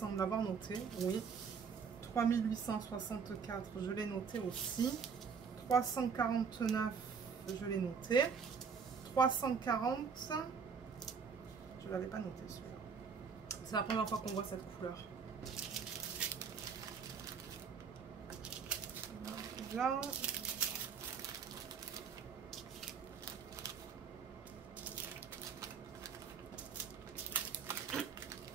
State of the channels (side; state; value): left; quieter; 6.1 dB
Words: avoir noté. Oui. 3864, je l'ai noté aussi. 349, je l'ai noté. 340, je ne l'avais pas noté celui-là. C'est la première fois qu'on voit cette couleur. Là.